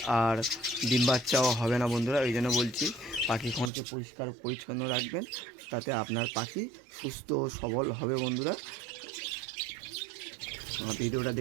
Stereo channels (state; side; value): drops out; left; at 3.7 s